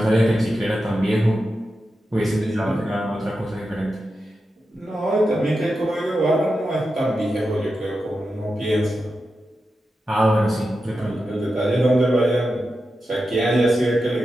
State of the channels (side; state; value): both; normal; correlation 0.90